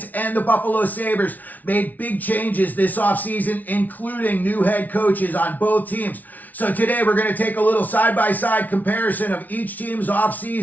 and the Buffalo Sabres made big changes this offseason, including new head coaches on both teams. So today we're going to take a little side-by-side comparison of each team's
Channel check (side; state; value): right; late; 0.077 ms